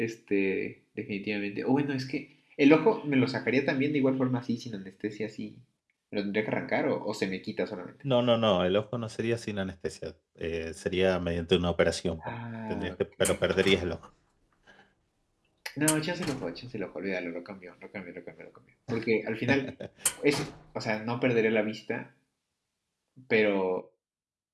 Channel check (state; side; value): identical; both; correlation 1.00